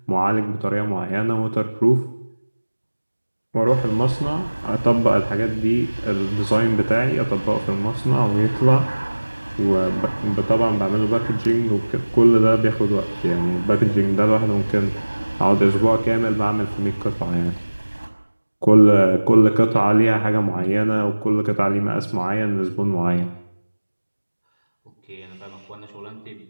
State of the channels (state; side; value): inverted; both; correlation -1.00